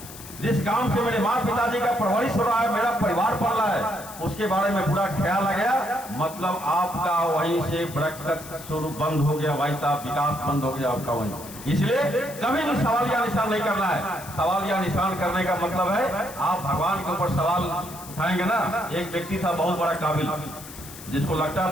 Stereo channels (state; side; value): noise; left; hiss, 15 dB below the sound